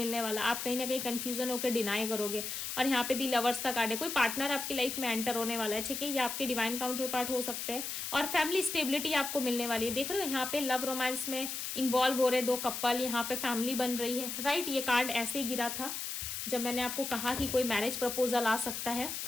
वाला, आप कहीं ना कहीं कंफ्यूजन होकर डिनाई करोगे। और यहाँ पे दी लवर्स का कार्ड है, कोई पार्टनर आपकी लाइफ में एंटर होने वाला है, ठीक है, ये आपके डिवाइन काउंटर पार्ट हो सकते हैं। और फैमिली स्टेबिलिटी आपको मिलने वाली है, देख रहे हो यहाँ पे लव रोमांस में इन्वॉल्व हो रहे 2 कपल, यहाँ पे फैमिली बन रही है, राइट। ये कार्ड ऐसे ही गिरा था जब मैंने आपको कहा कि कोई मैरिज प्रपोजल आ सकता है।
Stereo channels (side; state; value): left; noise; hiss, 4 dB below the sound